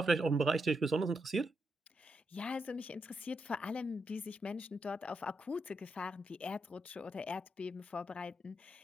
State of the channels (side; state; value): both; normal; correlation 0.82